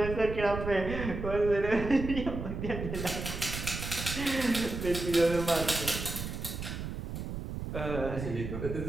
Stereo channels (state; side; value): noise; right; rumble, 6 dB below the sound